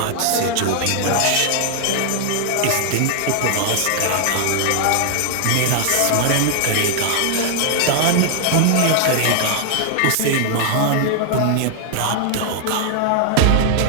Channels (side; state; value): both; different; correlation 0.00